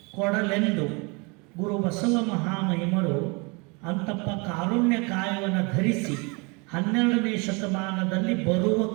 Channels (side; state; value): left; quieter; 29.9 dB